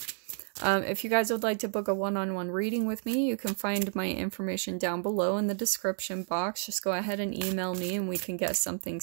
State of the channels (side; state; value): left; silent; digital silence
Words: if you guys would like to book a one-on-one reading with me, you can find my information down below in the description box. Just go ahead and email me and we can get something